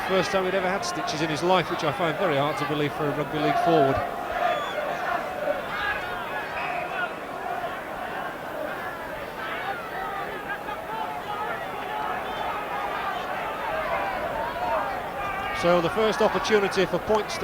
first time he'd ever had stitches in his life, which I find very hard to believe for a rugby league forward. So the first opportunity for points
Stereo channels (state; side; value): identical; both; correlation 1.00